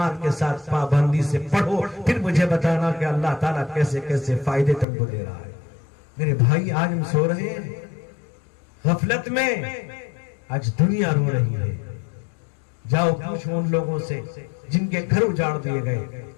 کے ساتھ پابندی سے پڑھو. پھر مجھے بتانا کہ اللہ تعالیٰ کیسے کیسے فائدے تم کو دے رہا ہے. میرے بھائی آج ہم سو رہے ہیں، غفلت میں آج دنیا رو رہی ہے. جاؤ پوچھو ان لوگوں سے جن کے گھر اجاڑ دیے گئے،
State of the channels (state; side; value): drops out; right; at 4.9 s